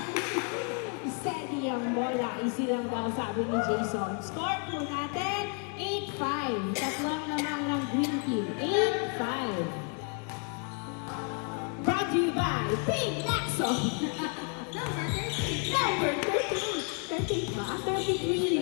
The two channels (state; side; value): quieter; right; 37.8 dB